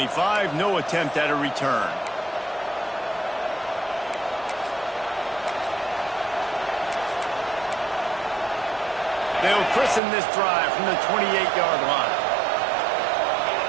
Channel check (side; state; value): left; drops out; at 10.0 s